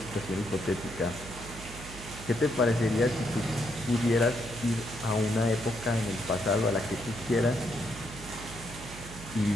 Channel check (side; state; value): right; noise; hum, 13 dB below the sound